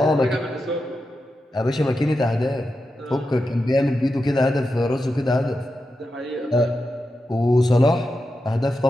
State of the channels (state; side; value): normal; both; correlation 0.89